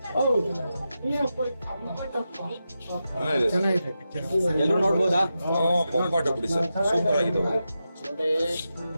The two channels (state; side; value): inverted; both; correlation -0.89